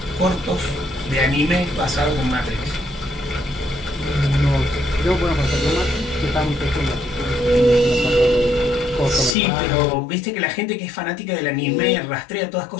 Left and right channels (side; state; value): right; drops out; at 9.3 s